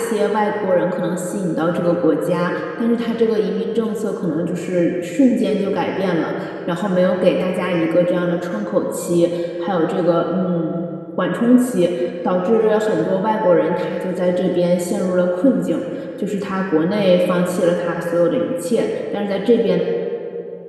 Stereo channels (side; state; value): both; identical; correlation 1.00